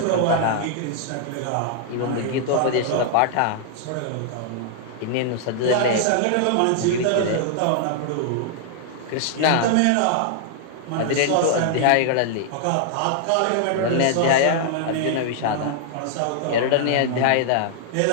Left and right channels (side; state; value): both; different; correlation -0.01